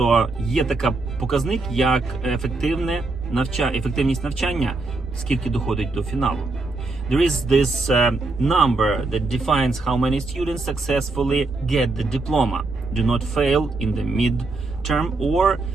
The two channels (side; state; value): left; quieter; 3.4 dB